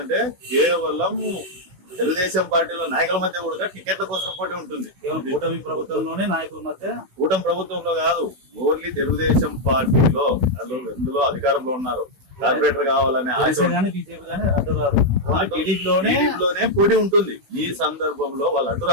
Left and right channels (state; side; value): late; left; 16 ms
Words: కేవలం తెలుగుదేశం పార్టీలో నాయకుల మధ్య కూడా టికెట్ల కోసం పోటీ ఉంటుంది. కూటమి ప్రభుత్వంలోనే నాయకుల మధ్య, కూటమి ప్రభుత్వంలో కాదు, ఓన్లీ తెలుగుదేశం పార్టీలో ఎందులో అధికారంలో ఉన్నారు. కార్పొరేటర్ కావాలనే టీడీపీలోనే పోటీ ఉంటుంది. ఈ సందర్భంలో వాళ్ళు